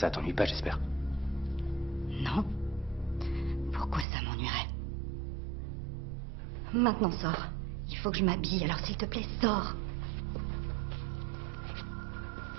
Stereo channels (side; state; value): left; drops out; at 4.0 s